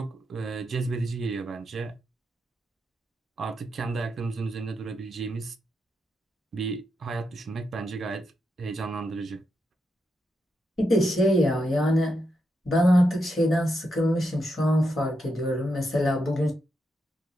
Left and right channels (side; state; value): both; normal; correlation 0.83